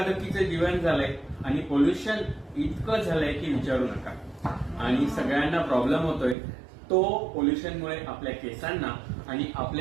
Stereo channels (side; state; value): left; drops out; at 6.4 s